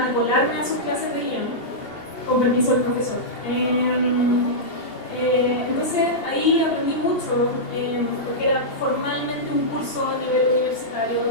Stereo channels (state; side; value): late; right; 2.8 ms